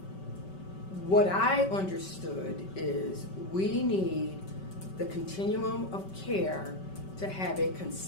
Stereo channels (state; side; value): late; right; 5.2 ms